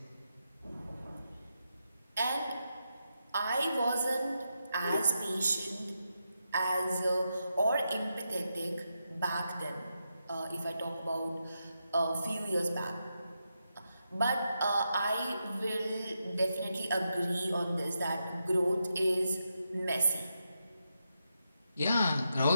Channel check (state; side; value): inverted; both; correlation -0.85